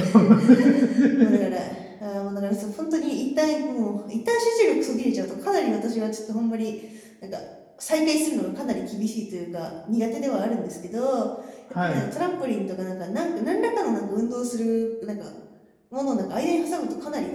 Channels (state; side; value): identical; both; correlation 1.00